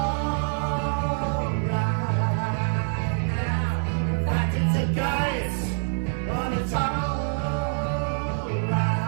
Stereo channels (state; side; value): silent; left; 61 dB below the other